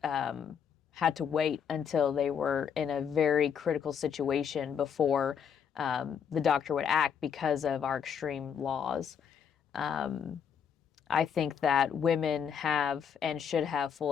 had to wait until they were in a very critical situation before the doctor would act because of our extreme laws. I think that women have and should have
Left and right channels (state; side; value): quieter; right; 7.5 dB